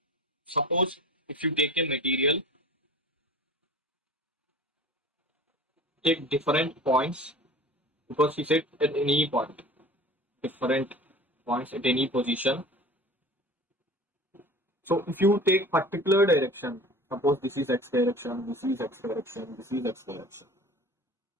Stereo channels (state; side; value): normal; both; correlation 0.40